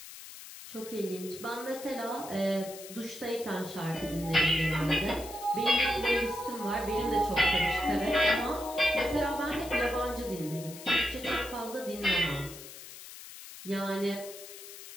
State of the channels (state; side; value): noise; left; hiss, 14 dB below the sound